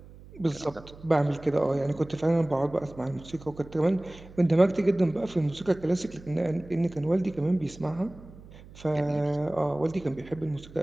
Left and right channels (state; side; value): noise; right; hum, 19 dB below the sound